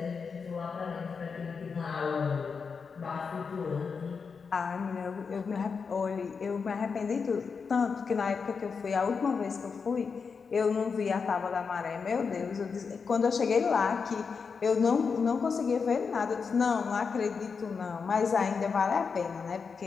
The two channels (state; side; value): quieter; right; 5.5 dB